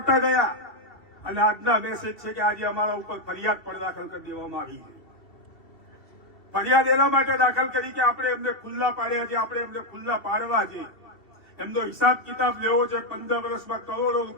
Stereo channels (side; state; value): right; late; 2.7 ms